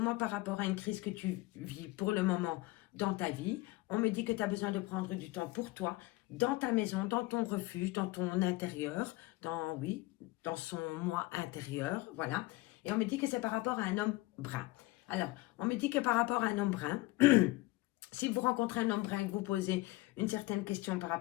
par rapport à une crise que tu vis pour le moment dans ta vie. On me dit que tu as besoin de prendre du temps pour toi, dans ta maison, dans ton refuge, dans ton intérieur, dans son moi intérieur, voilà. Et on me dit que c'est par rapport à un homme brun. Alors, on me dit que par rapport à un homme brun, si vous rencontrez un homme brun et que vous posez une certaine question par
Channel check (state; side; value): quieter; right; 20.2 dB